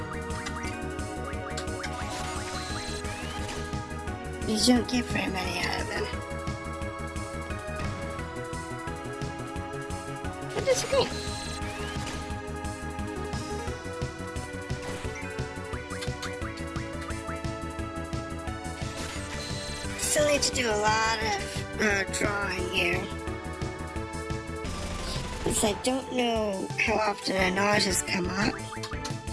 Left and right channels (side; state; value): both; identical; correlation 1.00